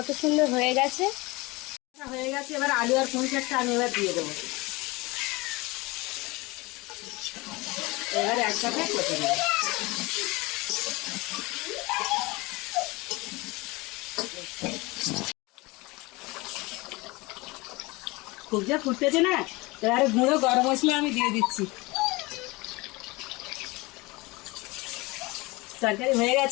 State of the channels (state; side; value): quieter; right; 23.5 dB